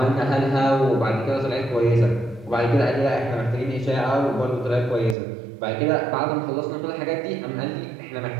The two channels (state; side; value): drops out; left; at 5.2 s